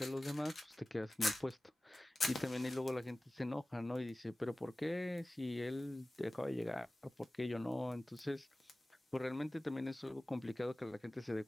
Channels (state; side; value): normal; both; correlation 0.97